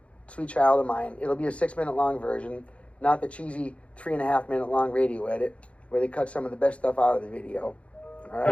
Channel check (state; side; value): late; right; 0.062 ms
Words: Sweet Child of Mine. It'll be a 6 minute long version, not the cheesy 3.5 minute long radio edit where they cut some of the best stuff out of the video. All